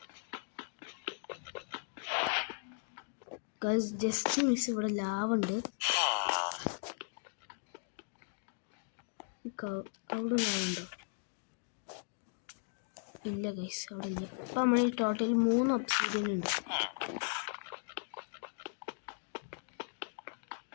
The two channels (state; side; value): silent; right; digital silence